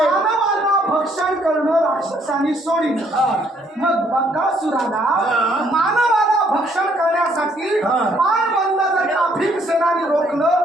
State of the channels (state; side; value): normal; both; correlation 0.67